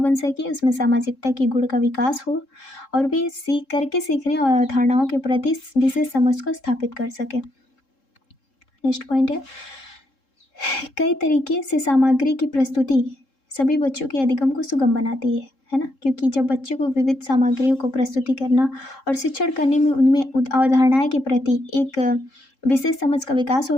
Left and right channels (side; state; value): right; late; 3.7 ms